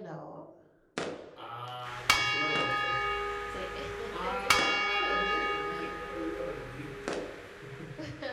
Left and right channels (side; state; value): both; identical; correlation 1.00